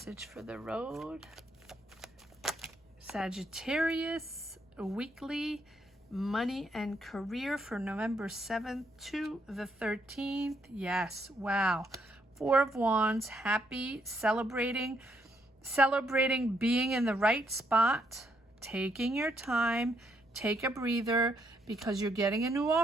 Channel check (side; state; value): both; normal; correlation 0.74